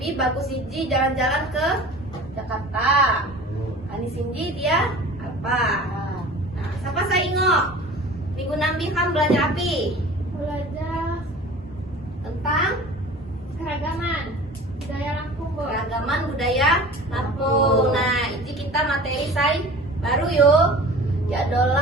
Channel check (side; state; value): both; normal; correlation 0.41